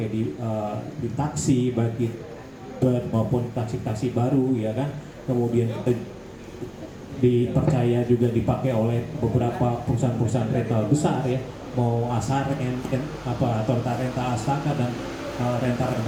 di taksi bagi maupun taksi-taksi baru ya kan. Kemudian kita dipercaya juga dipakai oleh beberapa perusahaan-perusahaan rental besar ya, mau Asar atau Renta Asaka dan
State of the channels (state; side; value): identical; both; correlation 1.00